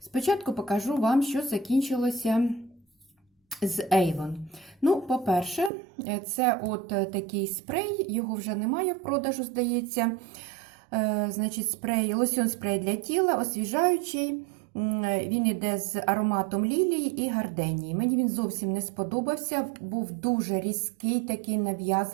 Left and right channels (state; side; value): drops out; left; at 5.7 s